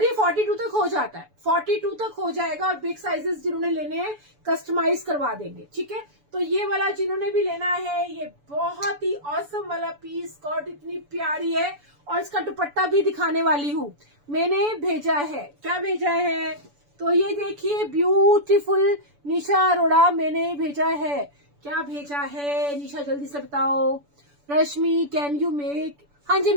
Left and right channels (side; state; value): left; late; 6.9 ms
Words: ये 42 तक हो जाता है, 42 तक हो जाएगा। और बिग साइजेस जिन्होंने लेने हैं कस्टमाइज करवा देंगे, ठीक है। तो ये वाला जिन्होंने भी लेना है, ये बहुत ही ऑसम वाला पीस, स्कर्ट इतनी प्यारी है। और इसका दुपट्टा भी दिखाने वाली हूँ, मैंने भेजा है। क्या भेजा है? तो ये देखिए, ब्यूटीफुल निशा अरोड़ा मैंने भेजा है। क्या भेजा है निशा, जल्दी से बताओ। रश्मि कैन यू मेक, हाँ जी